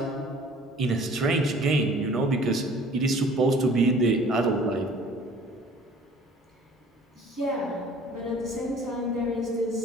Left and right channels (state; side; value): normal; both; correlation 0.50